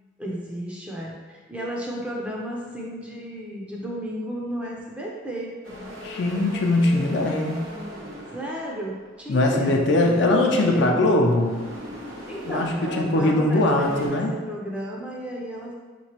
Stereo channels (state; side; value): normal; both; correlation 0.46